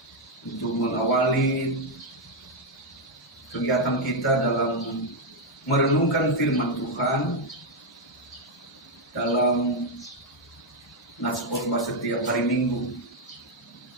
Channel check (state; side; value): normal; both; correlation 0.01